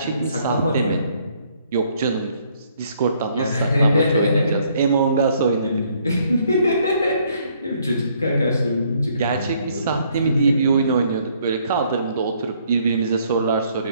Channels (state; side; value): inverted; both; correlation -0.67